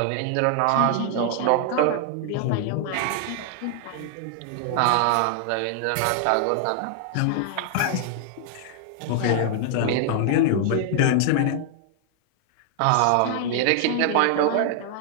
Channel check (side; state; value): both; different; correlation 0.00